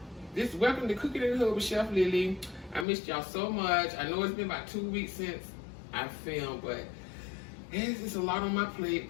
Welcome to Cooking in the Hood with Chef Lily. I missed y'all so much. I know it's been about 2 weeks since I filmed, but it's just a lot on my plate.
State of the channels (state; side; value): drops out; right; at 2.9 s